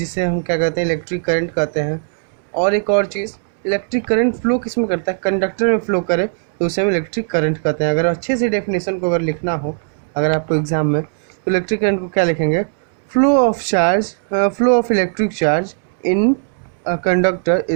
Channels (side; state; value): left; silent; 66 dB below the other